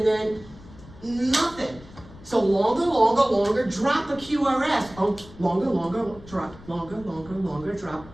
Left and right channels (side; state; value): left; noise; rumble, 19 dB below the sound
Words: then nothing. So longer, drop a QRS, oh, longer, drop, longer, drop,